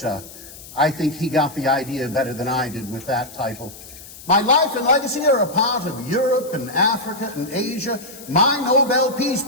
I think he got the idea better than I did with that title. My life and legacy are a part of Europe and Africa and Asia. My Nobel Peace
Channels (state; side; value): noise; left; hiss, 17 dB below the sound